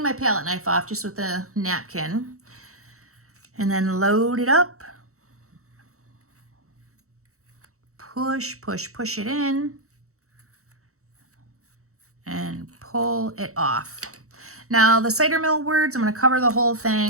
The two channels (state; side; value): late; left; 0.64 ms